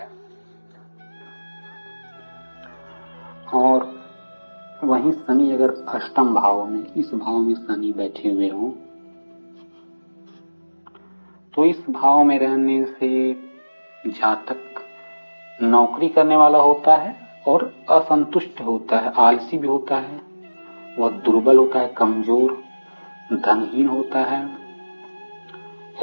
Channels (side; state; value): both; inverted; correlation -1.00